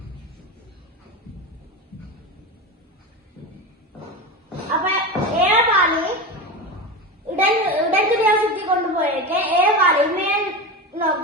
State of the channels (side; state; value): both; normal; correlation 0.22